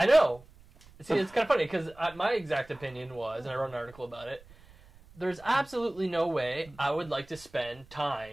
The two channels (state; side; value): noise; right; rumble, 24 dB below the sound